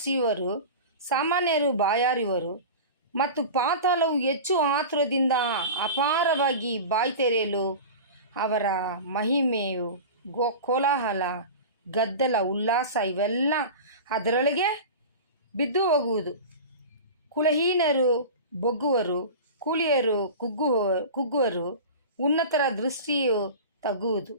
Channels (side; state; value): both; inverted; correlation -0.31